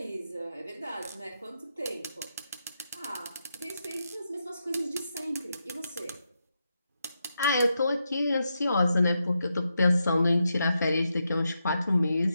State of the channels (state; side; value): inverted; both; correlation -0.85